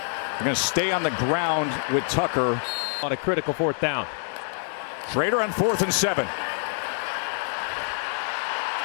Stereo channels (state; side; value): silent; right; 61 dB below the other